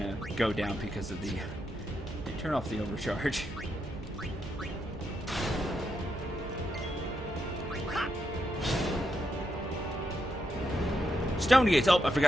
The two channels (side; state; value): both; normal; correlation 0.82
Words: go down because of the... Turn off the overcharge. Stone gates! Oh, I